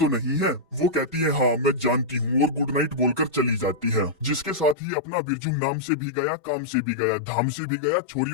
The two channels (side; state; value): right; drops out; at 4.8 s